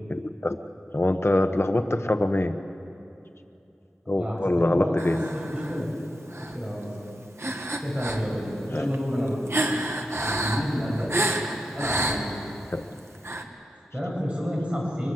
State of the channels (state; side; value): normal; both; correlation 0.89